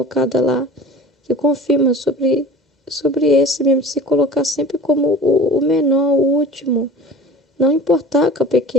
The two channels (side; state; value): both; normal; correlation 0.40